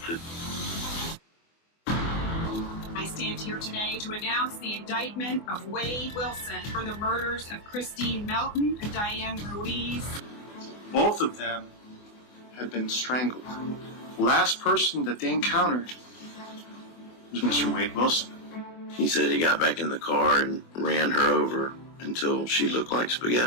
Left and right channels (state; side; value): late; right; 24 ms